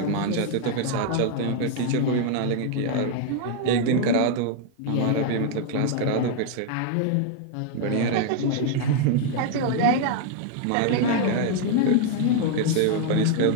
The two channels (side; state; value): both; different; correlation 0.00